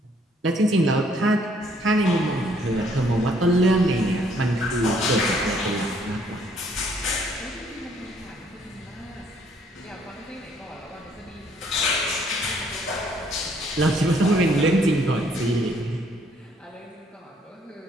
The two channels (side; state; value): both; normal; correlation 0.65